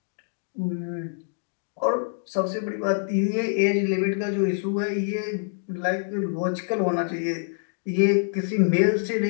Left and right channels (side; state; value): right; silent; digital silence